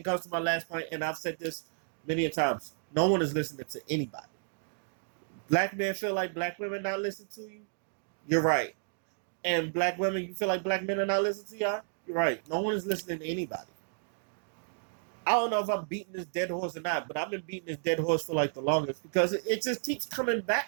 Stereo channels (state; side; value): silent; left; digital silence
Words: goes to my last point, and I've said this many a times. No one is listening to anybody. Black men feel like black women not listening to you. You're right. And black women, you feel like black men are not listening to y'all. You're right. No one is listening to anybody. I don't know if I'm beating this dead horse or not, but I've been beating this dead horse for like the longest because it just keeps coming